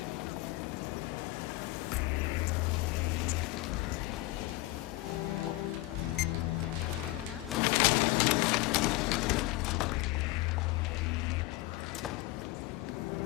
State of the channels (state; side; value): quieter; right; 19.8 dB